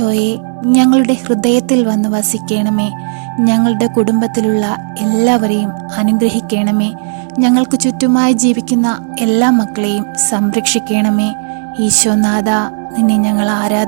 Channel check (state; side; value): silent; left; digital silence